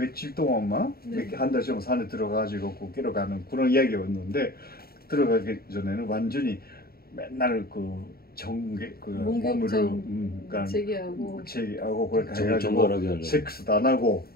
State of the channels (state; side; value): late; right; 0.44 ms